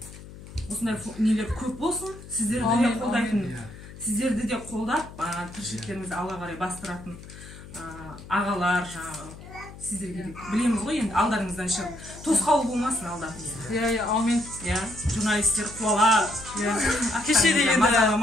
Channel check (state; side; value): noise; left; hum, 16 dB below the sound